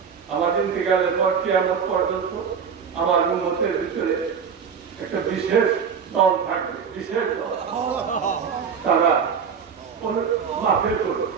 আমার ইন্তেকালের পর কিয়ামত পর্যন্ত আমার উম্মতের ভিতরে একটা বিশেষ দল থাকবে, বিশেষ দল। তারা মাহফিল করবে,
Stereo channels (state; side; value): quieter; left; 6.7 dB